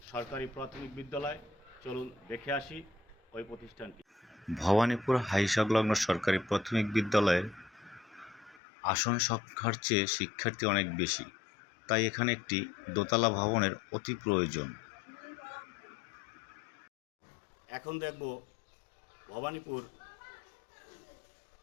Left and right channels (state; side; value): drops out; right; at 8.6 s